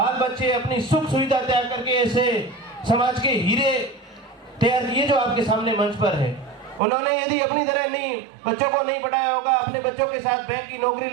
बच्चे, अपनी सुख सुविधा त्याग करके ऐसे समाज के हीरे तैयार किए जो आपके सामने मंच पर है। उन्होंने यदि अपनी तरह नहीं बच्चों को नहीं पढ़ाया होगा, अपने बच्चों के साथ बैंक की नौकरी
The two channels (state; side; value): drops out; left; at 6.8 s